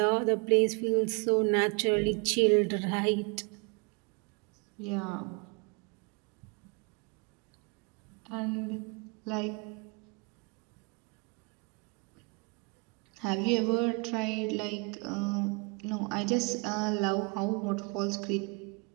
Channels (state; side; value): quieter; left; 31.5 dB